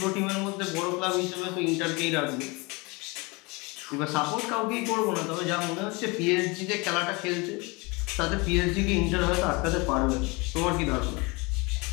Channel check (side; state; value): right; quieter; 27.0 dB